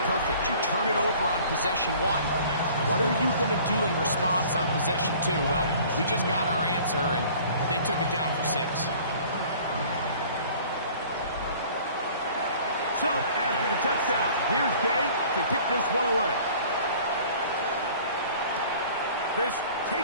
perfect. You turn it over on possession 1. What are you going to do in response on possession 2? Well, we just got our answer, and they took it down for 6. So, after the touchdown, here's Gay to kick this one away. This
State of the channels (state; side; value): inverted; both; correlation -0.49